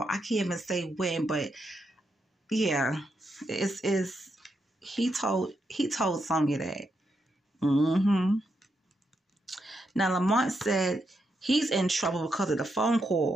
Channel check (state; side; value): normal; both; correlation 0.82